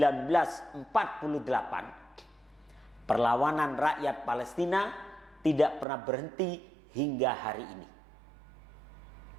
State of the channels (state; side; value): drops out; left; at 5.9 s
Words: perlawanan rakyat Palestina tidak pernah berhenti hingga hari ini,